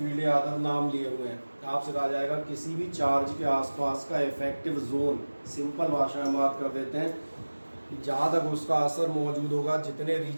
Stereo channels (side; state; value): both; inverted; correlation -1.00